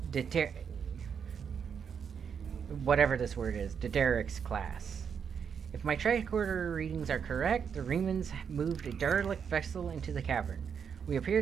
whatever this word is, Dederic's class. If my tricorder readings are correct, the Riemanns moved a derelict vessel into the cavern. We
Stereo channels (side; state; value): left; quieter; 7.0 dB